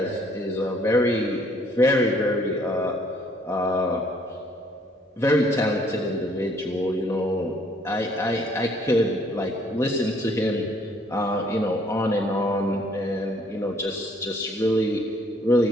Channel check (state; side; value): normal; both; correlation 0.63